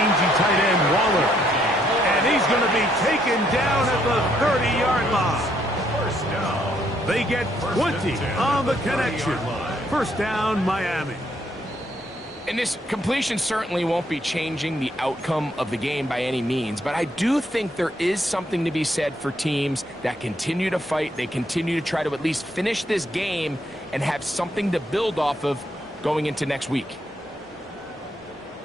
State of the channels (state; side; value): normal; both; correlation 0.72